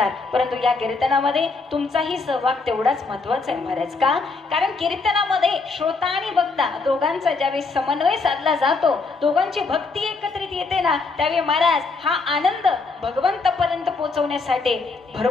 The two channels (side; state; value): right; quieter; 4.0 dB